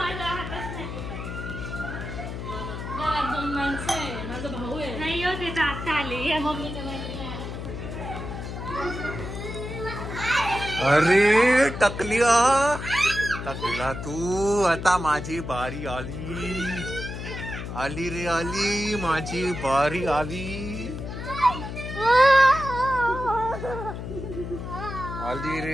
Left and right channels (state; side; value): noise; left; hum, 7 dB below the sound